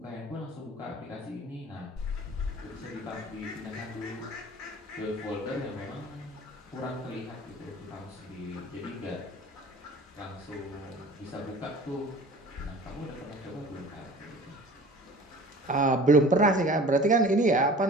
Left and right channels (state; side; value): normal; both; correlation 0.44